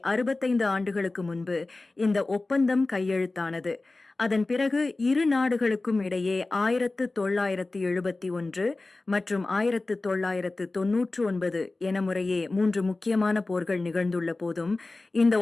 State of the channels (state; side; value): quieter; right; 3.2 dB